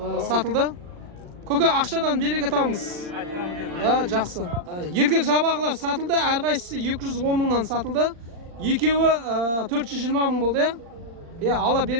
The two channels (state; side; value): late; left; 39 ms